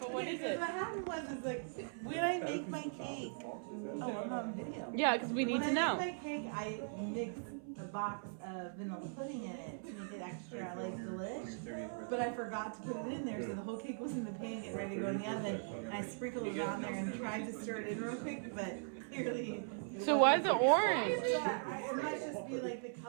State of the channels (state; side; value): silent; left; 51 dB below the other